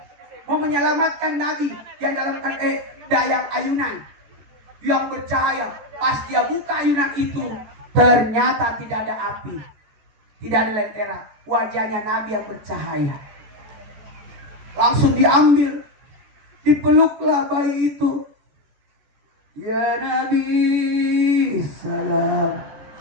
mau menyelamatkan Nabi yang dalam dayang ayunan yang bercahaya. Pas dia buka ayunan itu, ternyata tidak ada api, tidak ada lentera. Wajahnya Nabi yang bercahaya. Langsung diambil, dipeluklah bayi itu. Ya Nabi salam.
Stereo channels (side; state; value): left; late; 14 ms